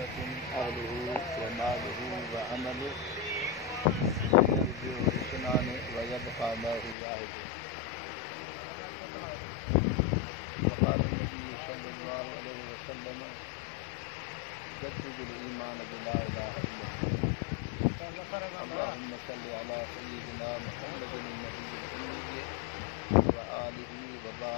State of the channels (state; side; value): drops out; right; at 7.0 s